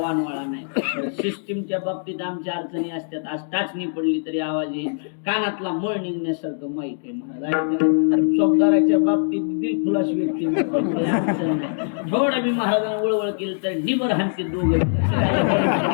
नाही. सिस्टीमच्या बाबतीत आमच्या अडचणी असतात. आज टाचणी पडली तरी आवाज येईल, कानातला मळ निघण्यासारखं माईक आहे महाराज. चौकदाराच्या बाबतीत दिलखुलास व्यक्ती थोडं मी महाराजांना वळवळ केलं तर निबर हाणते दोघे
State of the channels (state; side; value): silent; right; digital silence